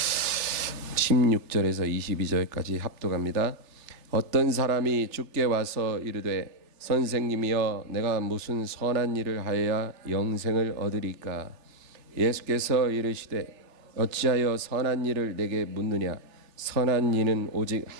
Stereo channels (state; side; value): late; left; 3.3 ms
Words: (16절에서 22절까지) 합독합니다. 어떤 사람이 주께 와서 이르되 선생님이여 내가 무슨 선한 일을 하여야 영생을 얻으리까? 예수께서 이르시되 어찌하여 선한 일을 내게 묻느냐? 선한 이는 오직